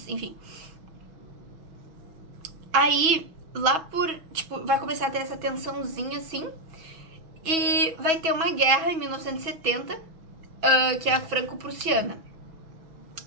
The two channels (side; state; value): left; late; 6.1 ms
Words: enfim. Aí, lá por, tipo, vai começar a ter essa tensãozinha, assim, e vai ter uma guerra em 1970, que é a franco-prussiana.